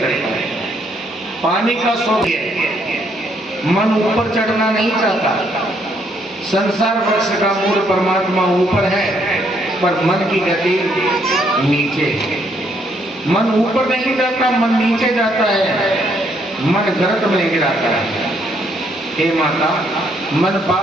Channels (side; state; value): both; normal; correlation 0.71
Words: चढ़ता। पानी का स्वभाव है, मन ऊपर चढ़ना नहीं चाहता। संसार वृक्ष का मूल परमात्मा ऊपर है, पर मन की गति नीचे है। मन ऊपर नहीं जाता, मन नीचे जाता है, मन गर्त में गिराता है। हे माता, मन